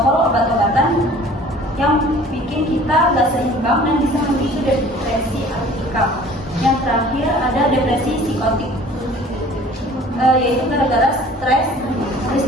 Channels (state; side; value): normal; both; correlation 0.48